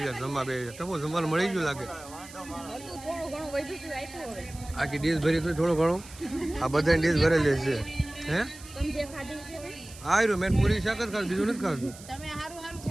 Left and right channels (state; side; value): noise; right; hiss, 18 dB below the sound